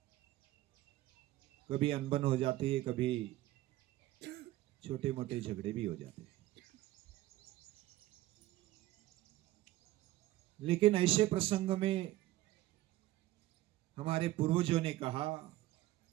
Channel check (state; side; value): quieter; left; 16.2 dB